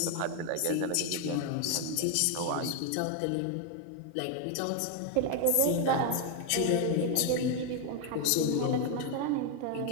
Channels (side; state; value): both; different; correlation 0.00